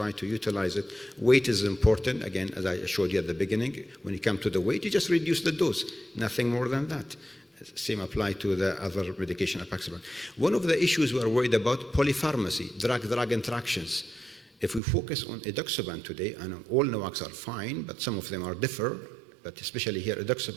to utilize it. Weight is important. Again, as I showed you at the beginning, when you come to the weight, you just reduce the dose, nothing more than that. Same apply to the other medication, apixaban. One of the issues we are worried about, polypharmacy, drug-drug interactions. If we focus on edoxaban today, and all NOACs are fine, but some of them are differ, but especially here,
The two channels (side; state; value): left; drops out; at 14.8 s